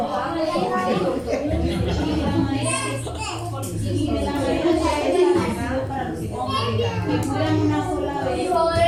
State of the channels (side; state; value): both; identical; correlation 1.00